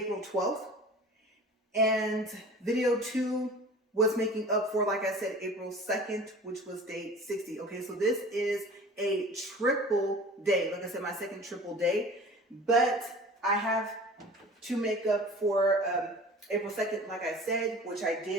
12th. And video 2 was making up for, like I said, April 2nd, which was day 60. Okay, so this is a triple day. Like I said, my second triple day. But I have to make up for April 2nd, like I said, which I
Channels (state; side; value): normal; both; correlation 0.42